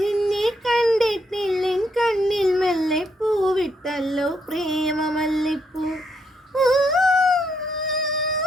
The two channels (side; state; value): both; normal; correlation 0.76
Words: നിന്നെ കണ്ടിട്ടില്ലെൻ കണ്ണിൽ മെല്ലെ പൂവിട്ടല്ലോ പ്രേമമല്ലിപ്പൂ.